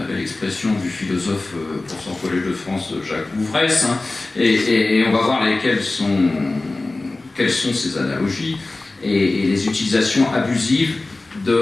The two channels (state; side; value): quieter; right; 3.1 dB